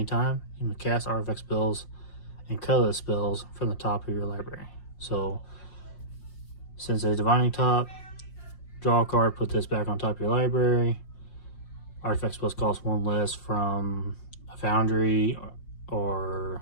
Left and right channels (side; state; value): right; late; 5.6 ms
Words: You may cast artifact spells and colorless spells from the top of your library. So since there's Divining Top, draw a card, put this back on top of your library. Artifact spells cost 1 less from a Foundry or